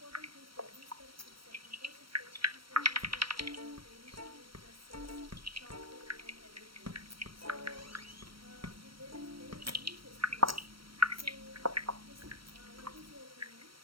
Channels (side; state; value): left; late; 0.74 ms